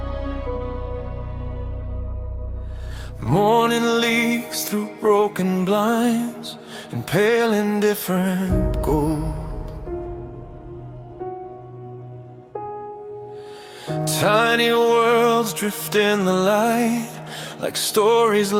Morning leaks through broken blinds and pale indifferent gold. Tiny worlds drift in the light like stories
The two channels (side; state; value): both; identical; correlation 1.00